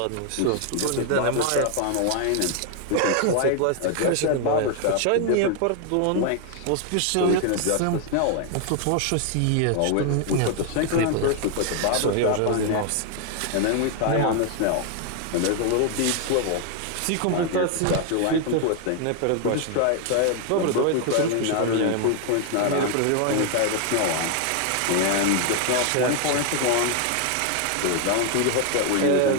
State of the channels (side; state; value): both; different; correlation 0.00